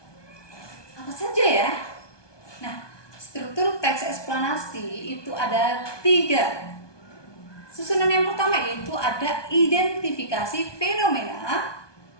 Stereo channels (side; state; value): right; late; 1.2 ms